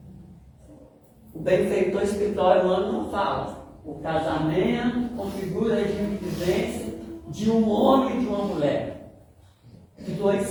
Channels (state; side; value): identical; both; correlation 1.00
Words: O benfeitor espiritual não fala. O casamento configura o regime de vivência de um homem e de uma mulher. De dois